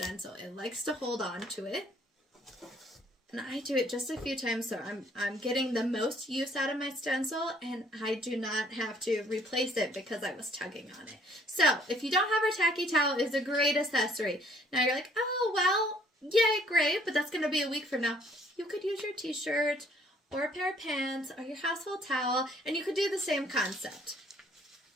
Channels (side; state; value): both; normal; correlation 0.61